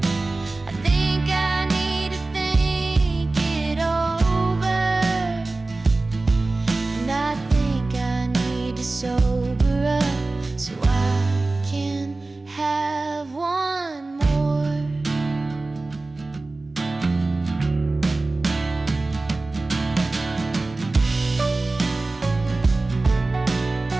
I think I need to think it over, and I think I need to sober up so I can have one more.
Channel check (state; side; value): quieter; left; 3.2 dB